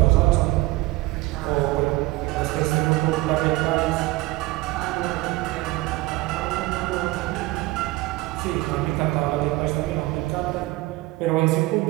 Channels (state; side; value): quieter; left; 19.7 dB